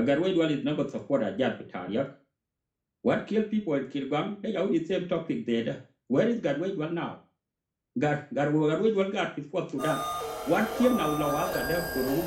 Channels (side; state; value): both; identical; correlation 1.00